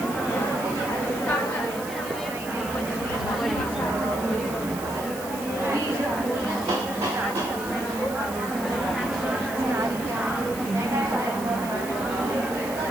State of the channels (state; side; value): noise; right; hiss, 13 dB below the sound